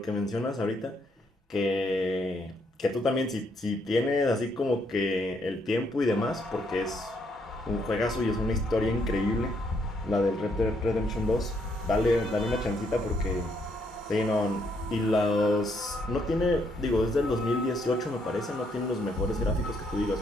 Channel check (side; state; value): both; normal; correlation 0.73